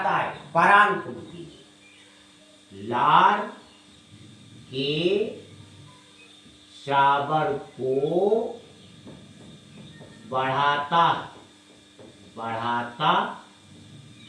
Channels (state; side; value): identical; both; correlation 1.00